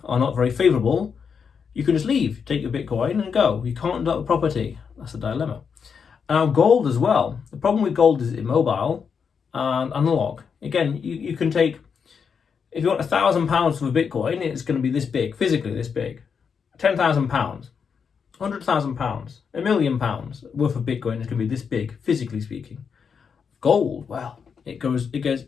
are not very favourable, you can just leave, take your Bitcoin and go. You can't do that with property. That's a dilemma. And now gold as well. The problem with gold is it's immobile and analog. Again, you can take, if you want £1,000 for a Bitcoin, it's going to be this big, physically this big. £10,000, £100,000, £1 million worth of Bitcoin is going to be this big, physically speaking. Gold, well, it gets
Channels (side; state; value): right; quieter; 6.4 dB